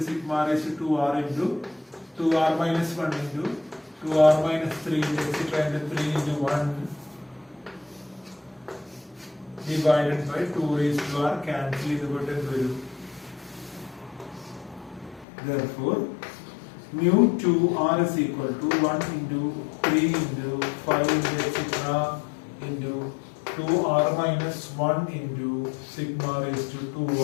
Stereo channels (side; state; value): right; drops out; at 15.2 s